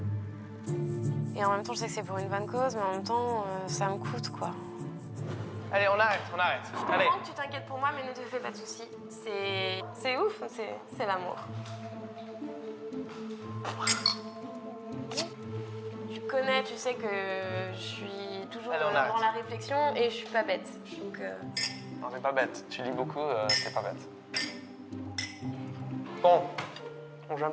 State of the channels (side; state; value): both; identical; correlation 1.00